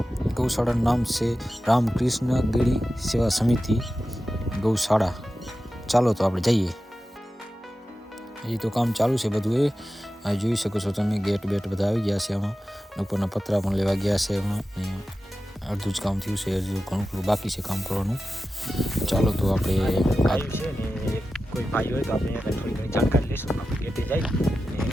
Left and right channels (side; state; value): both; normal; correlation 0.93